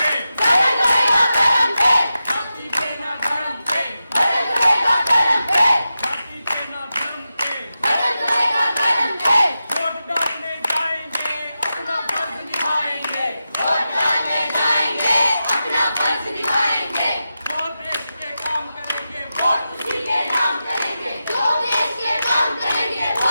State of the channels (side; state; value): both; inverted; correlation -0.91